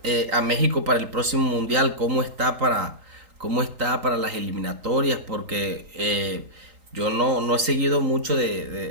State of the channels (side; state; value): left; late; 3.8 ms